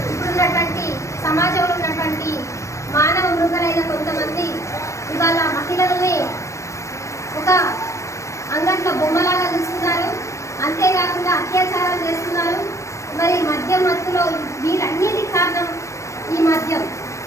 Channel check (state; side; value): late; right; 0.15 ms